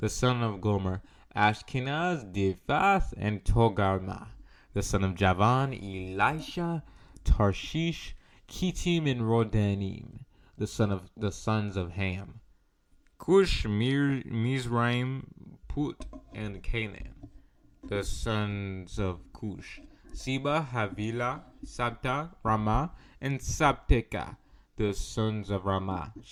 son of Gomer: Ashkenaz, Diphath, and Togarmah. The son of Javan: Elisha, Tarshish, Kittim, and Rodanim. The sons of Ham: Cush, Mizraim, Put, and Canaan. The sons of Cush: Seba, Havilah, Sabta, Ramah, and Sabteka. The sons of Ramah:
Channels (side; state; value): both; identical; correlation 1.00